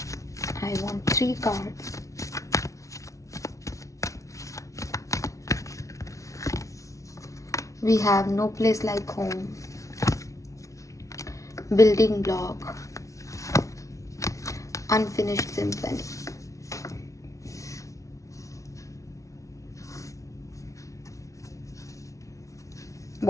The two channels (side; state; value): right; late; 0.15 ms